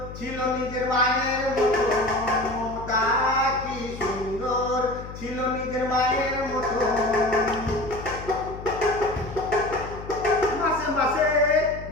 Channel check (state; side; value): noise; left; hum, 12 dB below the sound